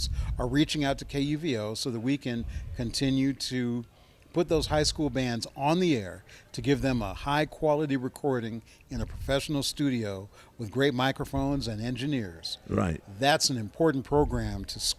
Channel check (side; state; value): both; identical; correlation 1.00